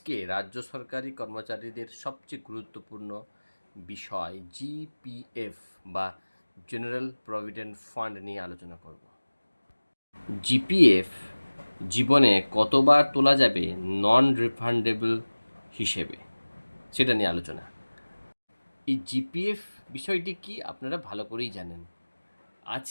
রাজ্য সরকারি কর্মচারীদের সবচেয়ে গুরুত্বপূর্ণ বিষয় জিপিএফ বা জেনারেল প্রভিডেন্ট ফান্ড নিয়ে আলোচনা করব। জিপিএফ জীবনে কতবার তোলা যাবে নন রিফান্ডেবল হিসেবে, সেটা নিয়ে আলোচনা। এই জিপিএফ বিষয়টি কি আপনারা ভালো করেই জানেন।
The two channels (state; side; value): inverted; both; correlation -1.00